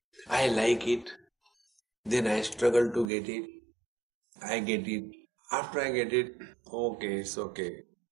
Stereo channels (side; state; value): left; drops out; at 3.1 s